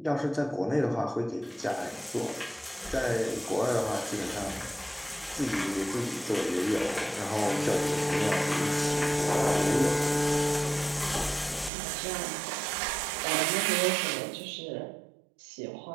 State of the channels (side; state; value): left; drops out; at 11.7 s